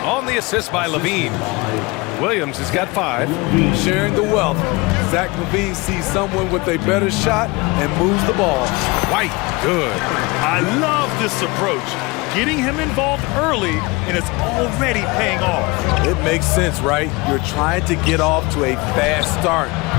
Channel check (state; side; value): quieter; right; 25.1 dB